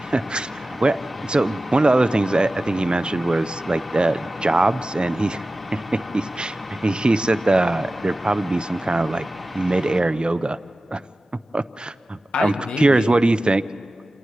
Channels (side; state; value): both; normal; correlation 0.95